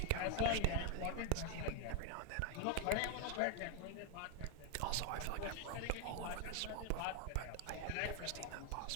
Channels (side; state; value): both; different; correlation 0.01